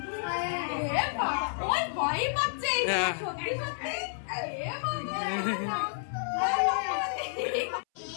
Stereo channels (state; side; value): silent; right; 58 dB below the other